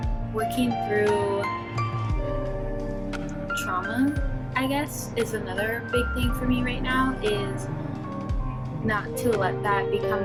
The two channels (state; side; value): identical; both; correlation 1.00